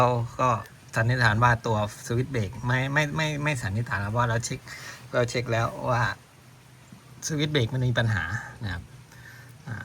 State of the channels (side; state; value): both; identical; correlation 1.00